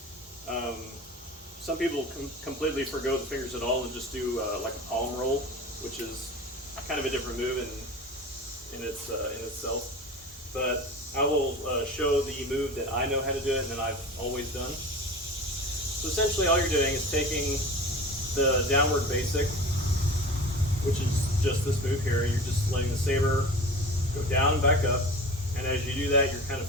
Some people completely forgo the fingers at all and just do like a palm roll, which is kind of a different move in itself. But I will show the move that I know how to do it and that I've always done. So essentially all you're doing is taking the downward basic, which is just this move here. You're just letting the saber go down and back up, and as you do that, you're kind of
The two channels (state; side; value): normal; both; correlation 0.36